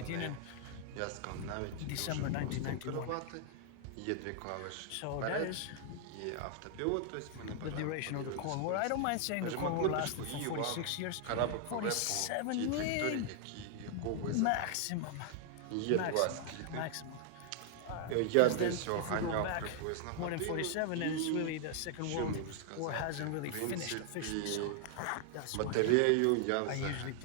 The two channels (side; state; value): both; different; correlation 0.00